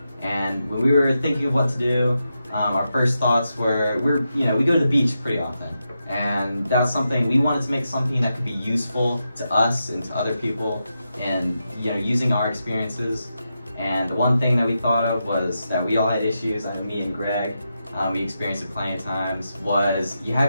And when we were thinking of what to do, our first thoughts were, we go to the beach pretty often, and that's something we wanted to make something that could be useful to us and to other people, and using our experiences. And the one thing that we thought of was that we all had issues. I mean, me and Greg, we experienced it plenty of times. Was you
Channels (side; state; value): both; inverted; correlation -0.87